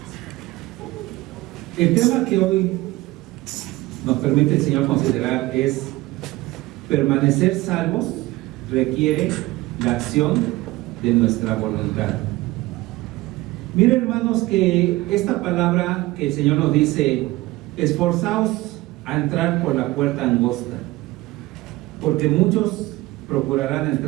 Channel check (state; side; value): quieter; left; 19.3 dB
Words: El tema que hoy nos permite el Señor considerar es: permanecer salvos requiere la acción de nuestra voluntad. Miren, hermanos, que esta palabra que el Señor nos dice: esforzaos a entrar por la puerta angosta, porque muchos procurarán